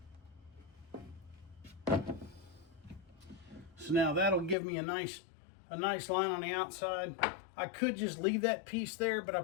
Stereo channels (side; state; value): right; drops out; at 4.5 s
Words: So now that'll give me a nice line on the outside. I could just leave that piece there, but I